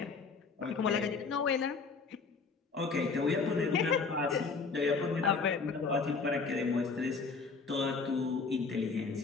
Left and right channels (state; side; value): quieter; right; 4.7 dB